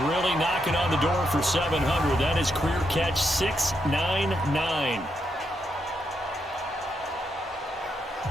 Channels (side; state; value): both; normal; correlation 0.81